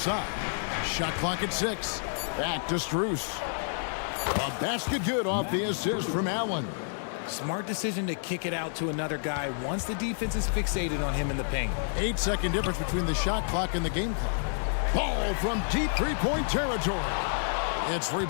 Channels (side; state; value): right; silent; 58 dB below the other